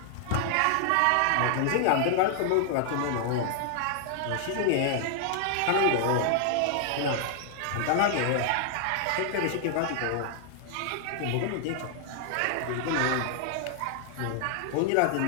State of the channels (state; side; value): different; both; correlation 0.00